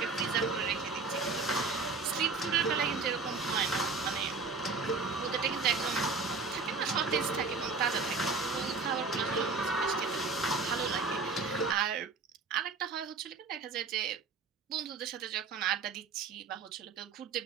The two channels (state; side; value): quieter; left; 4.4 dB